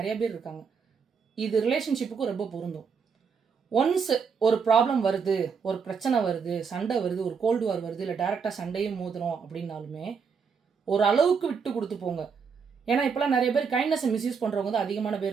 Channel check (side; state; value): left; quieter; 5.9 dB